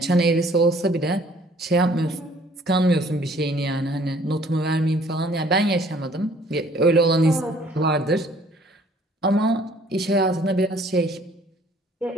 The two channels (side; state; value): both; normal; correlation 0.58